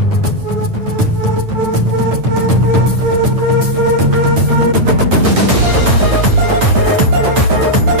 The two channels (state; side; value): late; left; 9.0 ms